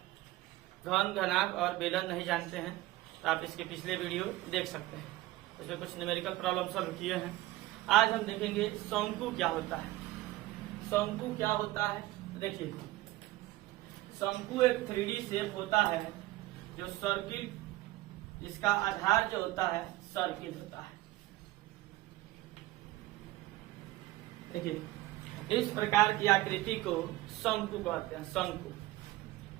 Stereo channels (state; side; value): quieter; left; 17.7 dB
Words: घन, घनाभ और बेलन नहीं जानते हैं तो आप इसके पिछले वीडियो देख सकते हैं, उसमें कुछ न्यूमेरिकल प्रॉब्लम सॉल्व किए हैं। आज हम देखेंगे शंकु क्या होता है। शंकु क्या होता है, देखिए शंकु एक 3D शेप होता है जो सर्किल, इसका आधार जो होता है सर्किल होता है। देखिए इस प्रकार की आकृति को शंकु कहते हैं, शंकु।